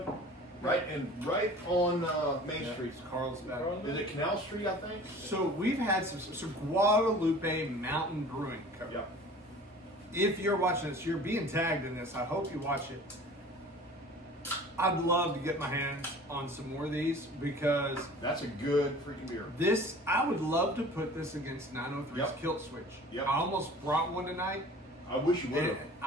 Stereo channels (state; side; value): normal; both; correlation 0.44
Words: right on Main Street. Carlsbad. Is it Canal Street, I think? So we've had so Guadalupe Mountain Brewing Co. Yeah. If you're watching this, you're being tagged in this. I hope you watch it. I'd love to get my hands on some more of these because That's a good freaking beer. I would love to put this against 903's Yep. Kilt Switch. Yep. I almost brought one tonight. I wish you would And have.